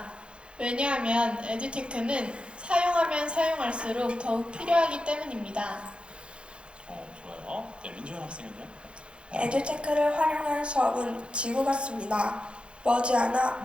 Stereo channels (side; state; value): left; late; 0.057 ms